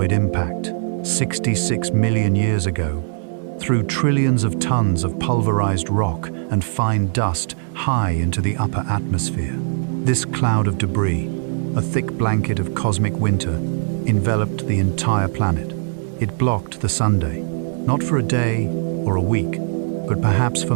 impact, 66 million years ago, threw trillions of tons of pulverized rock and fine dust high into the upper atmosphere. This cloud of debris, a thick blanket of cosmic winter, enveloped the entire planet. It blocked the sunday, not for a day or a week, but perhaps for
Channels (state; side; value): silent; left; digital silence